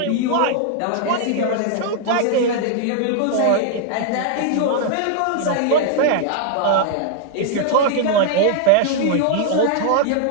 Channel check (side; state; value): both; different; correlation 0.00